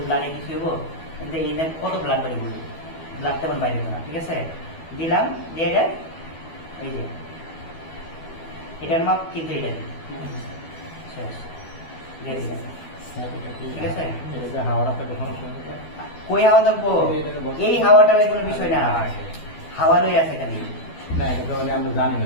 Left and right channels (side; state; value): right; late; 12 ms